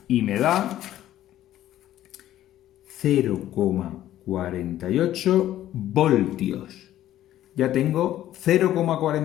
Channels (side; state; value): right; quieter; 13.0 dB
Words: y me da 0,48 voltios. Ya tengo